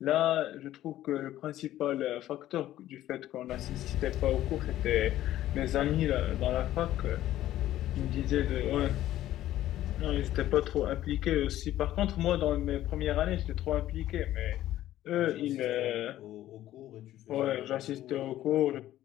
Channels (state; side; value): quieter; right; 13.7 dB